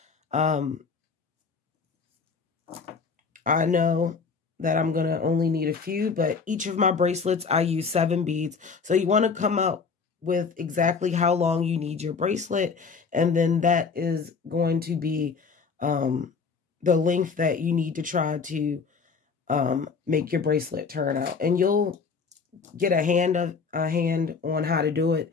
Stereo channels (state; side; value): quieter; right; 5.2 dB